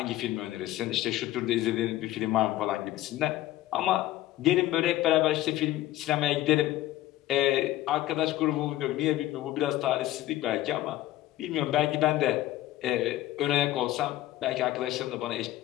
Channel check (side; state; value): right; quieter; 15.2 dB